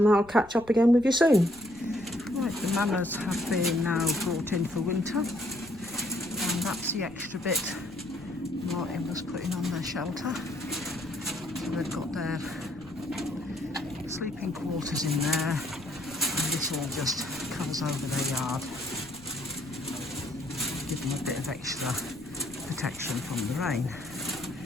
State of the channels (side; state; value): left; noise; rumble, 22 dB below the sound